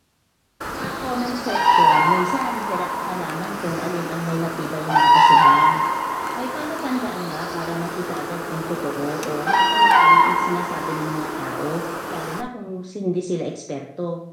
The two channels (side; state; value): both; identical; correlation 1.00